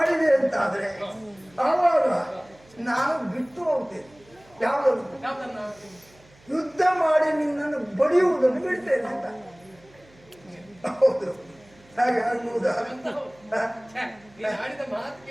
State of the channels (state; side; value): noise; right; hum, 28 dB below the sound